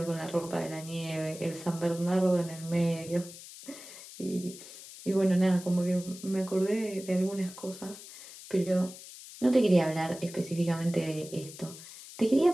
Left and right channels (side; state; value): left; noise; hiss, 15 dB below the sound